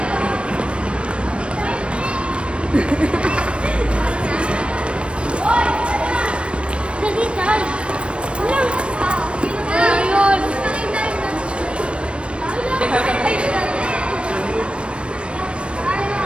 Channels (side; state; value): left; late; 0.059 ms